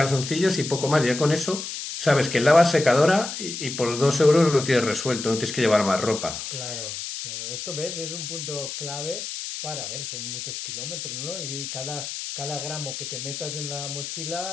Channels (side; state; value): left; noise; hiss, 7 dB below the sound